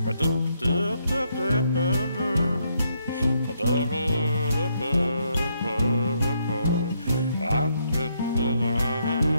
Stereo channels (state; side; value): inverted; both; correlation -0.75